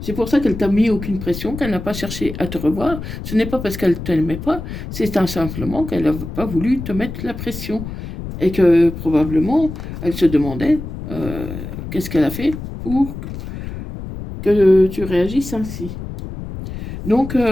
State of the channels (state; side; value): noise; left; rumble, 9 dB below the sound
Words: C'est pour ça qu'elle t'a mis aucune pression, qu'elle n'a pas cherché à te revoir. Ce n'est pas parce qu'elle ne t'aimait pas, c'est simplement qu'elle n'a pas voulu te mettre la pression. Et que probablement, elle se demandait qu'est-ce qu'elle a fait pour que tu réagisses ainsi. Donc,